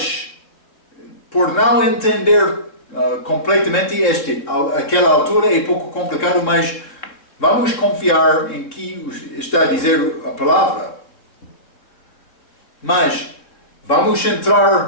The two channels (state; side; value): late; right; 3.6 ms